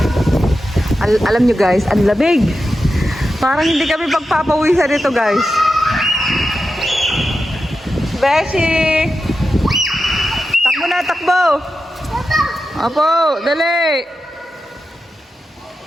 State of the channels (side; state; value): both; normal; correlation 0.90